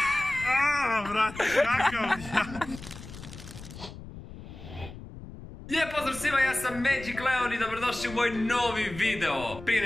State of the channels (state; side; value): noise; left; rumble, 14 dB below the sound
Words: Aaaa, brate, kakav ja. Lijep pozdrav svima, ja sam Magic Leon i dobrodošli u moj novi video. Prije